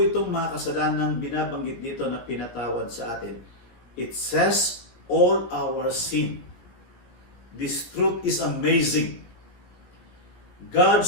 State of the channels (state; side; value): late; right; 17 ms